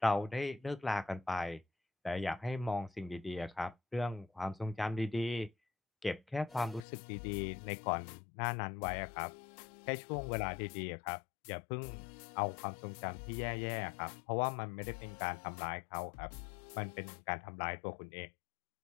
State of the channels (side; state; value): right; drops out; at 6.9 s